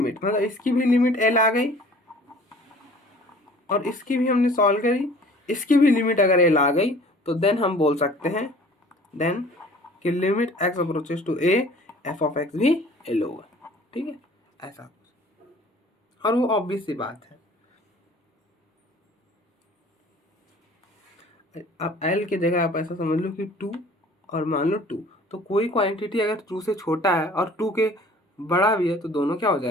मतलब इसकी भी लिमिट एल आ गई और इसकी भी हमने सॉल्व करी, इसकी भी लिमिट अगर एल आ गई तो देन हम बोल सकते हैं देन कि limit x approaches to a f of x भी एल होगा। ठीक है, ऐसा और वो ऑब्वियस सी बात है। अब एल की जगह आप ऐसा समझ लो कि 2 और मान लो 2, तो कोई क्वांटिटी अगर 2 से छोटा है और 2 के बड़ा भी है तो दोनों क्या हो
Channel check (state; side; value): normal; both; correlation 0.50